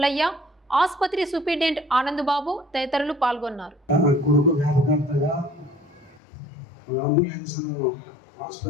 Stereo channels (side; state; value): right; drops out; at 6.2 s